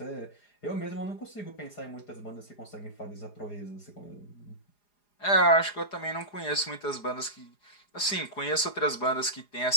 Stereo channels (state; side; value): late; right; 4.9 ms